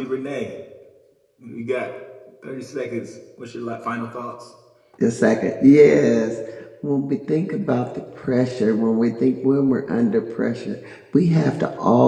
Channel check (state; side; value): identical; both; correlation 1.00